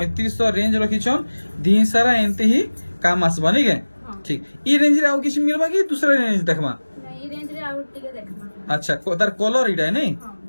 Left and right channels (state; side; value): inverted; both; correlation -1.00